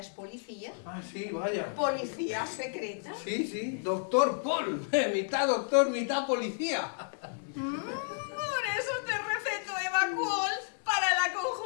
policía. Ah, sí, vaya. Policía secreta. Sí, sí, doctor Paul. Mitad doctor, mitad policía. Por eso te receto Evacol para la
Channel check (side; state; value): right; silent; 57 dB below the other